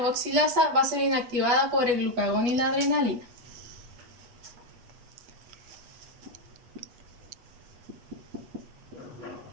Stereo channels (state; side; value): late; left; 8.3 ms